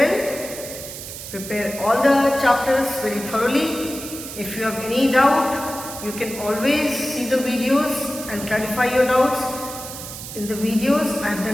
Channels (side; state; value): right; noise; hiss, 10 dB below the sound